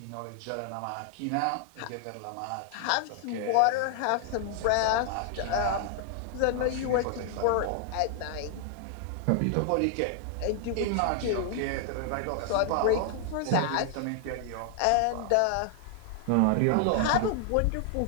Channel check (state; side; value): different; both; correlation 0.00